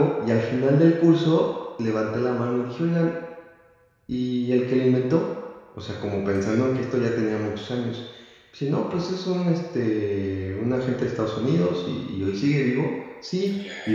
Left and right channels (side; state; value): both; identical; correlation 1.00